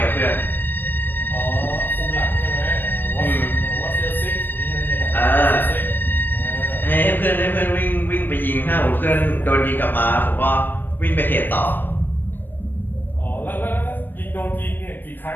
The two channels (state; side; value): late; right; 0.093 ms